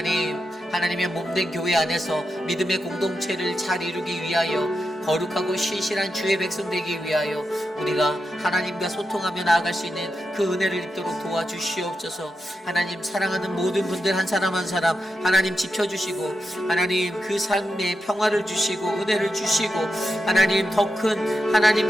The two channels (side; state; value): both; normal; correlation 0.88